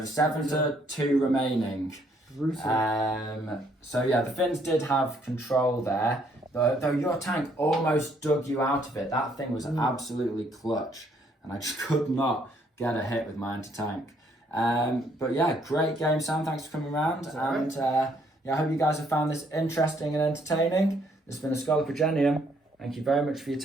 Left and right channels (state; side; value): normal; both; correlation 0.68